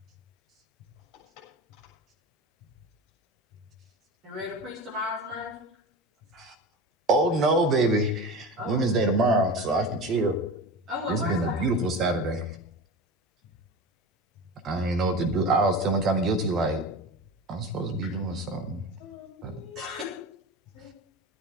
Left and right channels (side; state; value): both; normal; correlation 0.30